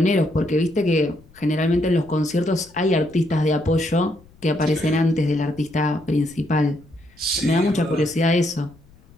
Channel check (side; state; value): left; noise; rumble, 27 dB below the sound